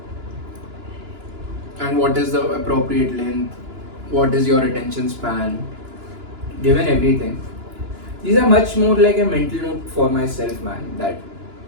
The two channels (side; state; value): left; late; 2.9 ms